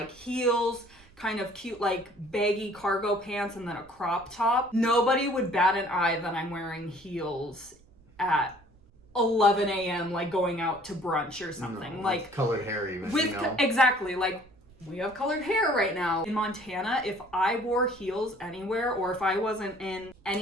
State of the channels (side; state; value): right; noise; rumble, 27 dB below the sound